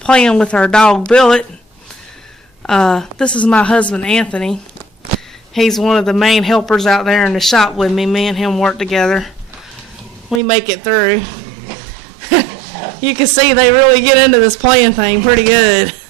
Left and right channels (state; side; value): drops out; left; at 10.4 s